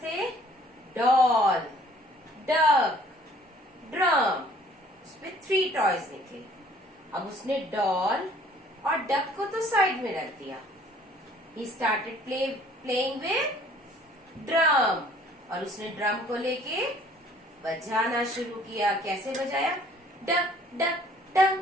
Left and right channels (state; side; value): normal; both; correlation 0.56